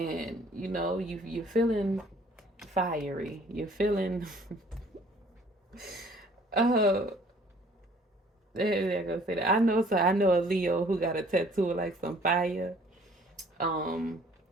you're feeling fiery. You're feeling They're gonna say that. I know. So I know a Leo who got a tattoo of like some fire, um,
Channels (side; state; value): both; normal; correlation 0.56